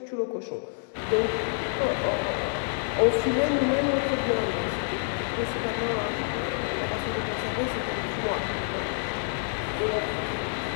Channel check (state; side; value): silent; right; digital silence